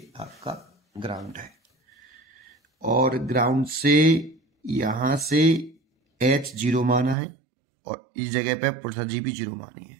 आपका ग्राउंड है और ग्राउंड से यहां से h जीरो माना है और इस जगह पे पोटेंशियल जी भी जीरो मानी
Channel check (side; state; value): left; drops out; at 7.2 s